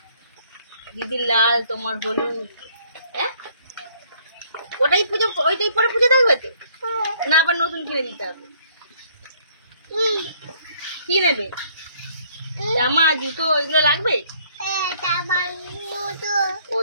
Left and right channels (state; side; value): inverted; both; correlation -0.63